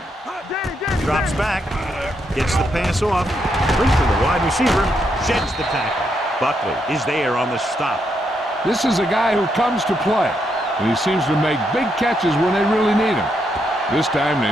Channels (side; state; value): both; normal; correlation 0.79